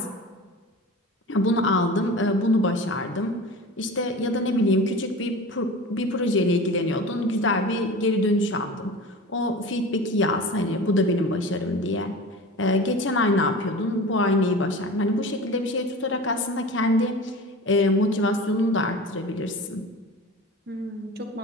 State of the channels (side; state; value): both; normal; correlation 0.35